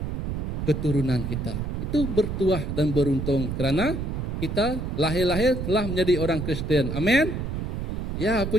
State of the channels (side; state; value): right; noise; rumble, 3 dB below the sound